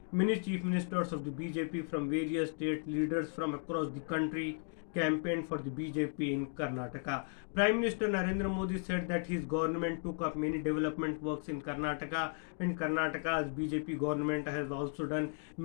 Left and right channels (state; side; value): silent; right; 54 dB below the other